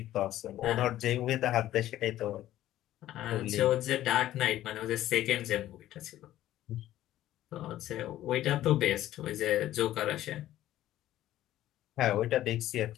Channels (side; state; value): right; quieter; 13.7 dB